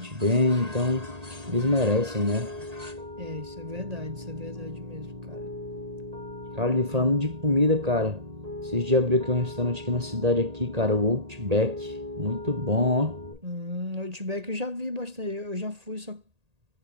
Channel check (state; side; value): late; left; 1.8 ms